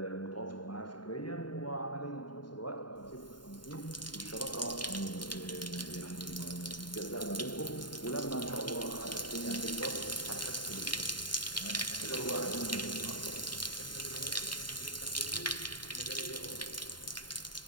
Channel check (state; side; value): late; right; 0.71 ms